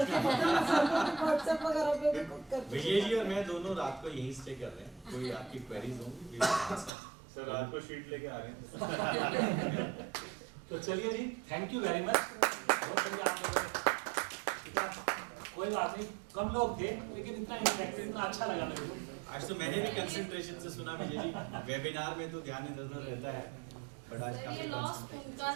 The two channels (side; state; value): left; drops out; at 6.9 s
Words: व्हाट्सएप वगैरह पे भी करते विजय जी और मैं दोनों रात को यहीं स्टे कर रहे हैं, कोई आपकी क्वेरीज होंगी सर रात को शीट लेके आ रहे हैं। तो चलिए जी, थैंक यू वेरी मच। बहुत बढ़िया आप लोगों ने, कोई बात नहीं, कम लोग थे लेकिन इतना इंटरेक्टिव, इतना अच्छा लगा मेरे को। आज तो मैंने भी कंसंट्रेशन से सुना विजय जी, वेबिनार में तो ध्यान इधर रहता है, बट आज ये काफी लॉस्ट उनका